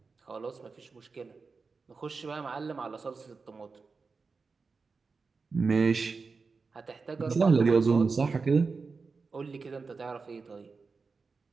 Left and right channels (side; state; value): left; quieter; 4.5 dB